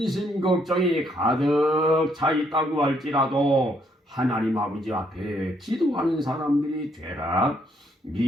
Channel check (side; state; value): both; normal; correlation 0.71